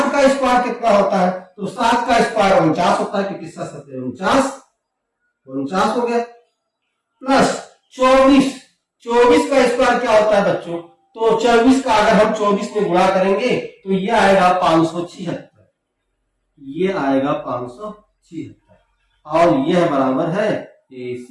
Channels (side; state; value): both; identical; correlation 1.00